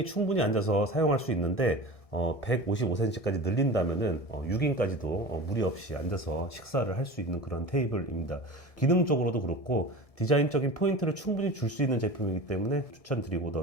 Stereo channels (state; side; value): late; right; 1.6 ms